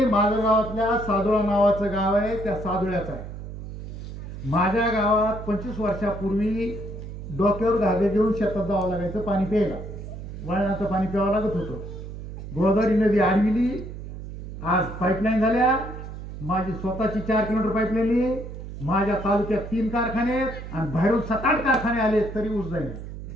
माझ्या गावातल्या सादुळा नावाचं गाव आहे, त्या सादुळ्याचं आहे. माझ्या गावात 25 वर्षापूर्वी डोक्यावर धागे घेऊन शेतात जावं लागायचं पाणी प्यायला. वळणाचं पाणी प्यावं लागत होतं. गोदावरी नदी आडविली. आज पाईपलाईन झाल्या. माझी स्वतःची 4 किलोमीटर पाईपलाईन. माझ्या तालुक्यात 3 कारखाने आहेत आणि बाहेरून 7-8 कारखाने आले तरी ऊस जाईल.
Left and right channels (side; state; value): right; noise; hum, 10 dB below the sound